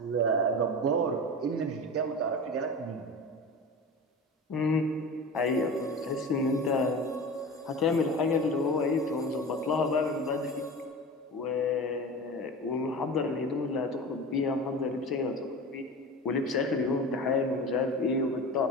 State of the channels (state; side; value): normal; both; correlation 0.31